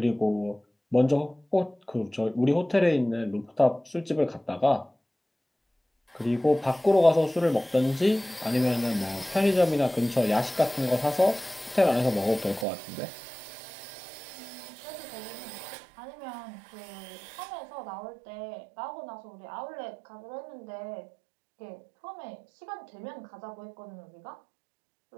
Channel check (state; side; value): drops out; left; at 12.7 s